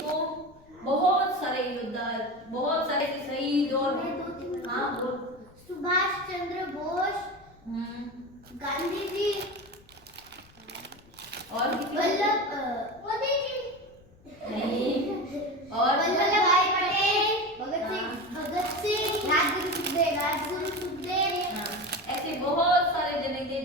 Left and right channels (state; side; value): noise; left; rumble, 27 dB below the sound